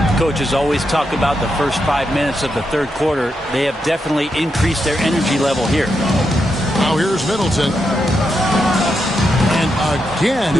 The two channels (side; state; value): both; normal; correlation 0.84